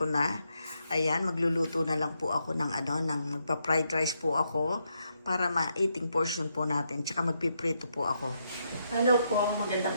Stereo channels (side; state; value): both; inverted; correlation -0.80